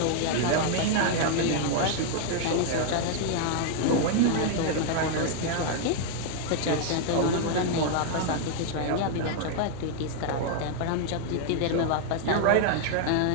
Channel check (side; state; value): both; different; correlation 0.00